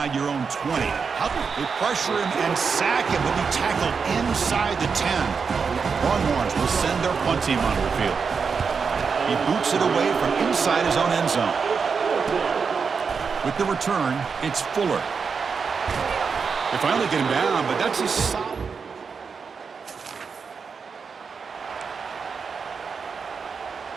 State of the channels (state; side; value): quieter; left; 5.6 dB